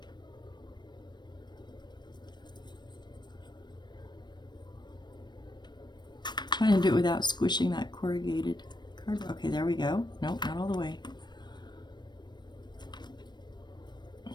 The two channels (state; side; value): late; right; 0.21 ms